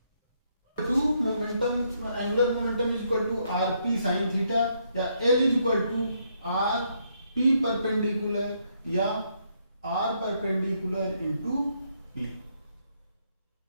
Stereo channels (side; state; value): both; inverted; correlation -0.74